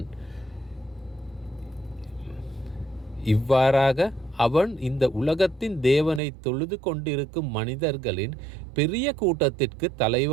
இவ்வாறாக அவன் இந்த உலகத்தின் தேவனை தொழுது கொண்டிருக்கும் மனிதர்களின் பெரிய கூட்டத்திற்கு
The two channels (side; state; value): left; drops out; at 6.2 s